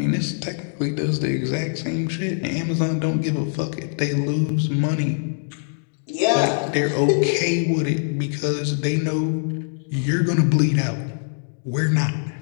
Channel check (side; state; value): right; silent; digital silence